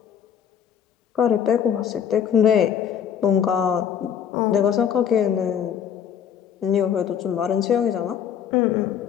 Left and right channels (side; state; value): right; quieter; 8.5 dB